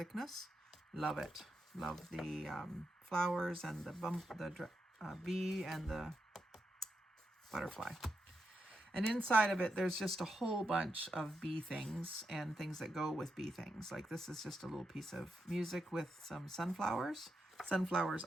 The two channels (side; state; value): both; normal; correlation 0.85